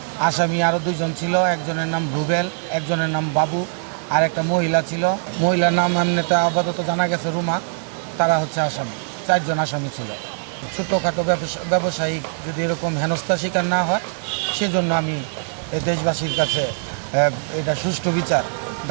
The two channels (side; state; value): left; silent; 64 dB below the other